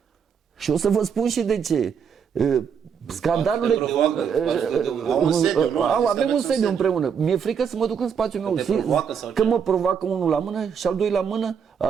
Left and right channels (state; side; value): quieter; left; 7.1 dB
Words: Și o să vă spun și de ce. Scandalurile... Avem un sediu împreună. Mi-e frică să mă duc în spațiul meu. Că mă provoacă unul la mână și al